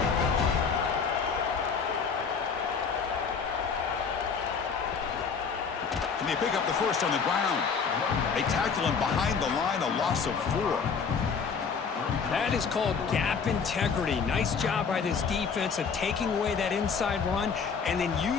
Can they pick up the first on the ground? They tackle him behind the line, a loss of 4. That is called gap integrity. Nice job by this defense of taking away that inside run and then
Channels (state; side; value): quieter; right; 5.8 dB